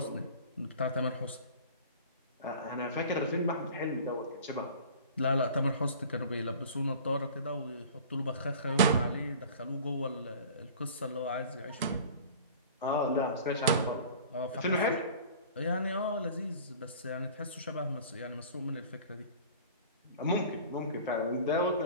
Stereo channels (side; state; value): both; inverted; correlation -0.43